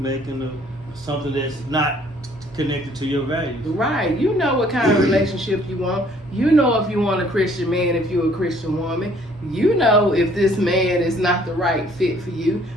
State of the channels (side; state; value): both; normal; correlation 0.60